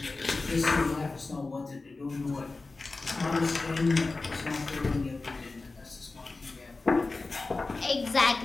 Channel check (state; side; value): quieter; right; 3.6 dB